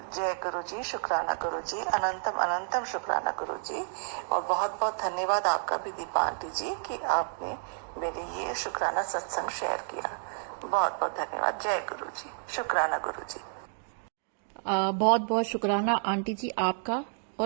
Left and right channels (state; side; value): silent; left; digital silence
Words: गुरुजी, शुक्राना गुरुजी, अनंतम अनंतम शुक्राना गुरुजी। और बहुत बहुत धन्यवाद आपका भी दीपा आंटी जी कि आपने मेरे ये शुक्राना सत्संग शेयर किया। बहुत बहुत धन्यवाद। जय गुरुजी, शुक्राना गुरुजी। बहुत बहुत शुक्राना आंटी जी आपका